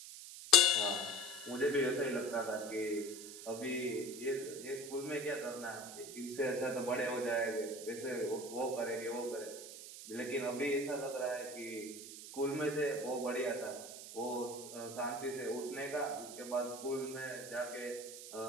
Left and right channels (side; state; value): right; noise; hiss, 11 dB below the sound